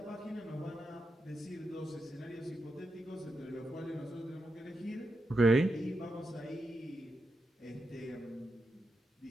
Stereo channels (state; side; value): normal; both; correlation 0.87